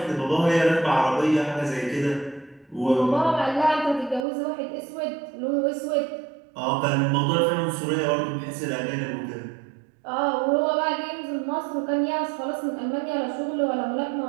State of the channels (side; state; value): left; drops out; at 4.2 s